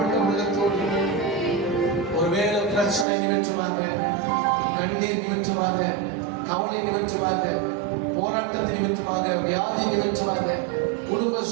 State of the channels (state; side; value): drops out; left; at 3.1 s